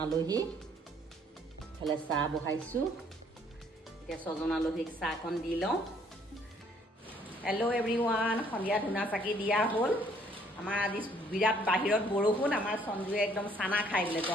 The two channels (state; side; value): normal; both; correlation 0.63